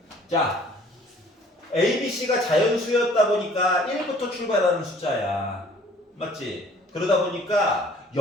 자, A, B, C가 자연수였다 보니까 1부터 출발하는 숫자야. 맞지? 그러다 보니까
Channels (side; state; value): both; normal; correlation 0.55